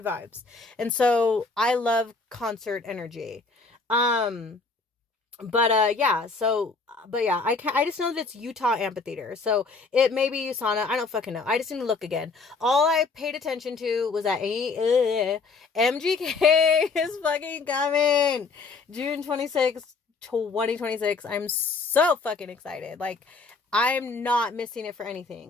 vibes. And so I love concert energy. Um but yeah, I just know that it's Utah Amphitheater. So it may be USANA. I don't fucking know. I just need to look again. All I paid attention to was that MGK is fucking coming. June 26th, 2026. I'm so fucking excited. Like, I'm not missing it for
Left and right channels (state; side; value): quieter; right; 4.2 dB